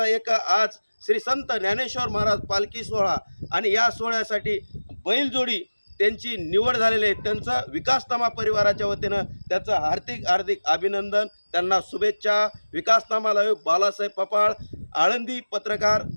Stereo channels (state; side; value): inverted; both; correlation -1.00